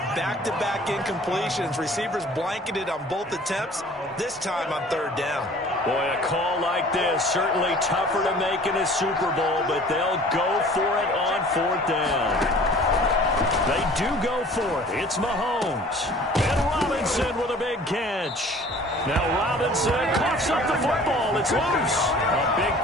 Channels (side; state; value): both; normal; correlation 0.48